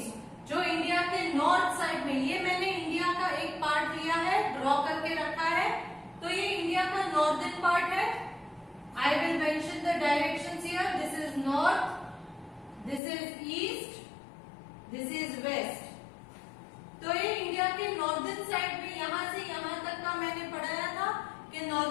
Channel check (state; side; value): drops out; right; at 13.0 s